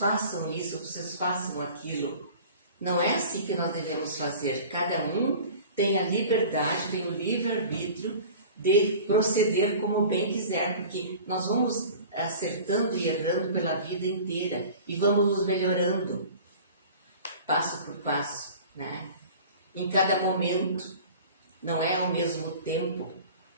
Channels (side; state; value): both; inverted; correlation -0.41